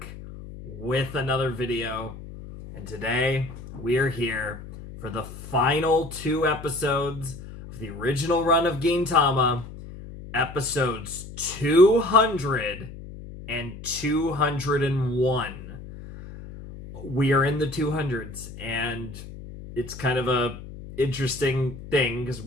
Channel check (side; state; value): left; noise; hum, 13 dB below the sound